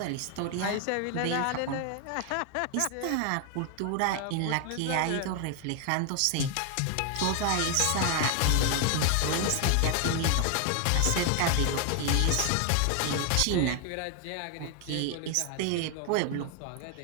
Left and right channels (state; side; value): different; both; correlation 0.00